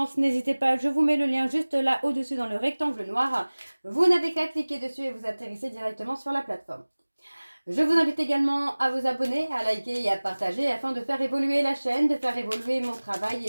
n'hésitez pas, je vous mets le lien juste là au-dessus dans le rectangle noir. Vous n'avez qu'à cliquer dessus et vous atterrissez directement sur la plateforme. Je vous invite également à vous abonner, à liker et à partager afin de faire évoluer la chaîne, de faire évoluer mon travail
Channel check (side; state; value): both; inverted; correlation -1.00